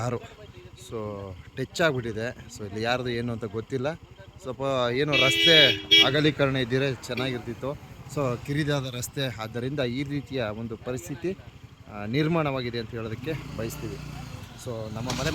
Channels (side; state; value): both; identical; correlation 1.00